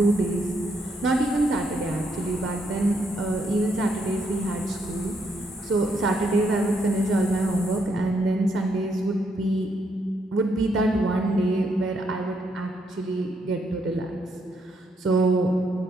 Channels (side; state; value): both; normal; correlation 0.75